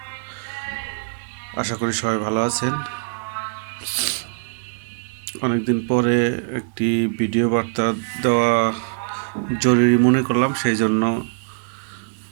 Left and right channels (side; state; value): left; silent; digital silence